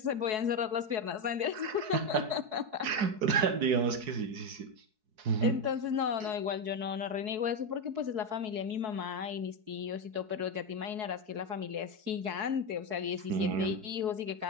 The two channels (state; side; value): late; left; 4.7 ms